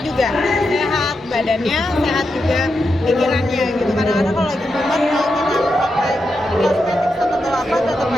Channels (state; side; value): normal; both; correlation 0.86